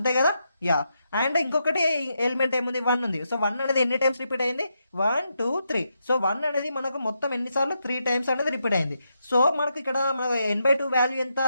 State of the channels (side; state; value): both; inverted; correlation -0.82